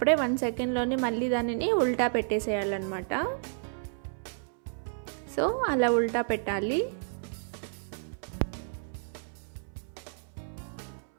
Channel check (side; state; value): left; silent; 57 dB below the other